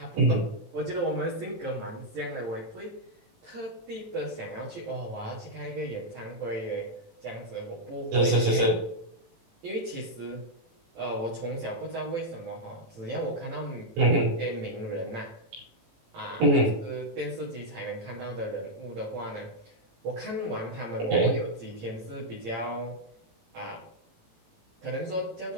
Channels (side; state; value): left; late; 18 ms